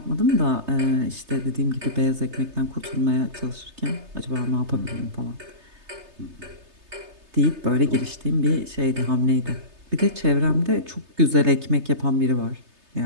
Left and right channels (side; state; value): left; late; 3.3 ms